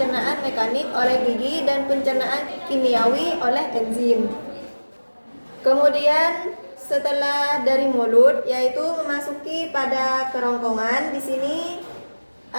mekanik oleh gigi dan pencernaan kimiawi oleh enzim. Kemudian setelah dari mulut, yaitu memasuki pada kerongkongan. Di sini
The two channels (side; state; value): both; inverted; correlation -1.00